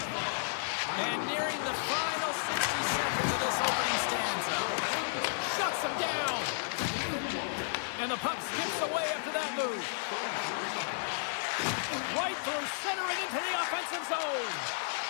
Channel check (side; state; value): right; silent; digital silence